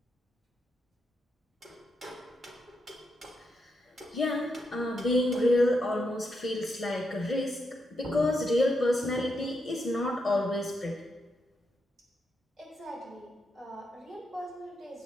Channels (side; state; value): both; normal; correlation 0.82